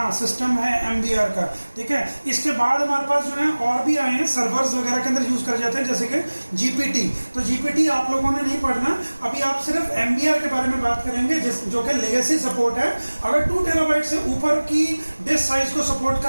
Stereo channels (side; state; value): both; inverted; correlation -1.00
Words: सिस्टम है MBR का, ठीक है। इसके बाद हमारे पास जो है और भी आए हैं, सर्वर्स वगैरह के अंदर यूज कर जाते हैं, जैसे कि GPT। तो GPT आप लोगों ने नहीं पढ़ना, अभी आप सिर्फ MBR के बारे में बात करेंगे जो कि लेगेसी सपोर्ट है। अगर 2 टेराबाइट से ऊपर की डिस्क साइज को सपोर्ट